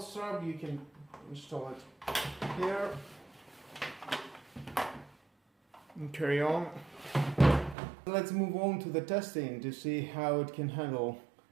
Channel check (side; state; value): left; drops out; at 7.8 s